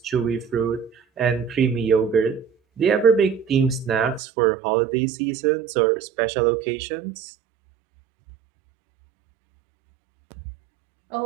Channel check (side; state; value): left; drops out; at 4.2 s